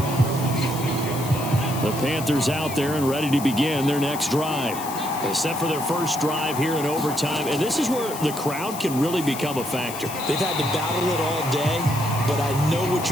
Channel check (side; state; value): left; noise; hiss, 11 dB below the sound